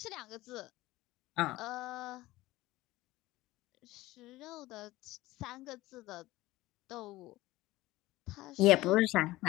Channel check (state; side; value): quieter; right; 18.1 dB